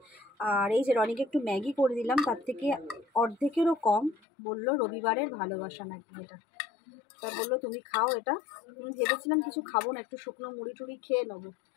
আর এই যে রনিকে একটু ম্যাগি করে দিলাম, তার থেকে অর্ধেকেরও কম। বললো রবিবারের ভালোবাসা নাকি এটা, তা বললো তুমি খাও এটা। আমি ভেবেছিলাম কিছু খাবো না, একটু শুকনো মুড়ি টুড়ি খেয়ে নেবো,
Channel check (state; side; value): drops out; right; at 4.2 s